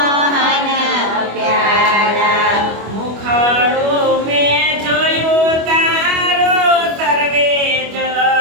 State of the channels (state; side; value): late; left; 25 ms